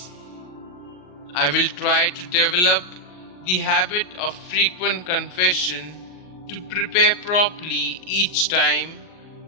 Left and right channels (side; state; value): right; late; 40 ms